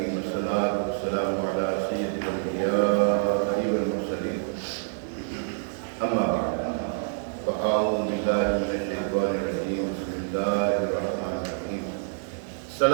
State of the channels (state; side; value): silent; left; 60 dB below the other